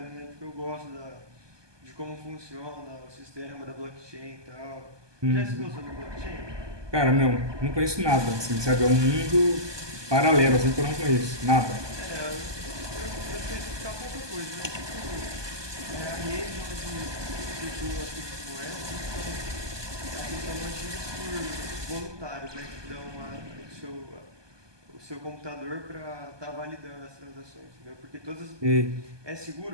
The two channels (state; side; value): late; left; 1.2 ms